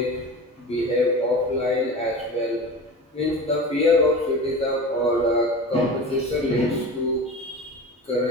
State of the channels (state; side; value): normal; both; correlation 0.32